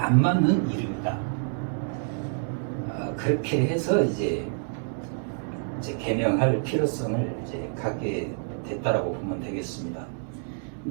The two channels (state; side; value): silent; left; 60 dB below the other